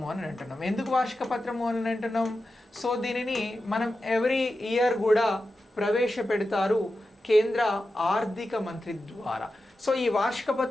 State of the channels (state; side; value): normal; both; correlation 0.91